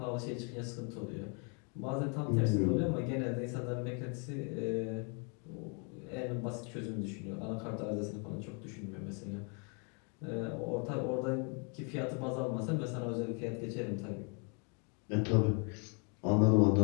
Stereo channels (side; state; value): right; quieter; 36.7 dB